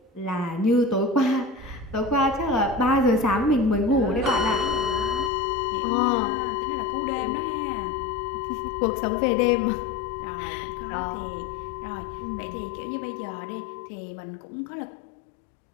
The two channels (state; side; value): drops out; right; at 5.3 s